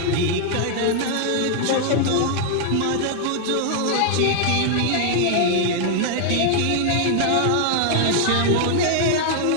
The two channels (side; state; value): both; different; correlation -0.01